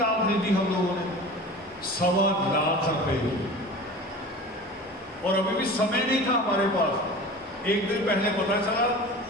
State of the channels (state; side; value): normal; both; correlation 0.37